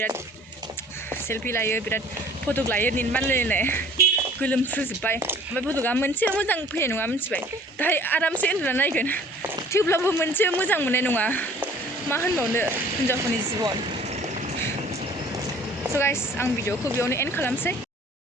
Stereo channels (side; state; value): both; normal; correlation 0.52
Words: सेल्फि लायो बिराद फटक लायो निनबानलायनाय गोलोमफ्रुजोब्बाय ओमफ्राय फटका मोनसे मोजां फैनाय नङा मिथिबाय दाहाय आरामसे उन्दुना नायगोन थेवब्लाबो मोनसे मोजां मोननाय नङा मा होनबावनो हिन्जावफोरनि जिबन स' गाइस आं भिडिअखौ बेयावनो एन्ड खालामसै